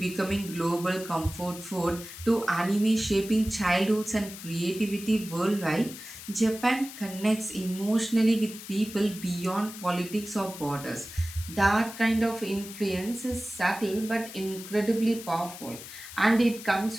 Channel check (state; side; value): noise; left; hiss, 13 dB below the sound